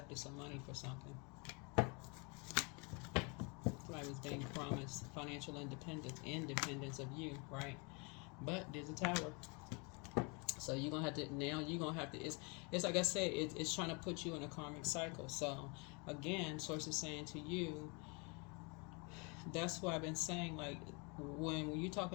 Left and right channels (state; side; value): quieter; right; 31.7 dB